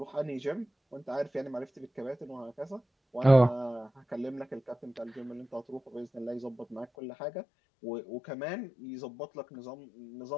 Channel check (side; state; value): right; drops out; at 6.9 s